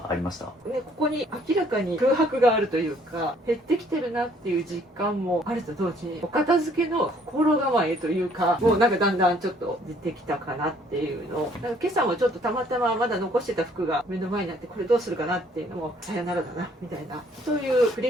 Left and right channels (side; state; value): both; normal; correlation 0.62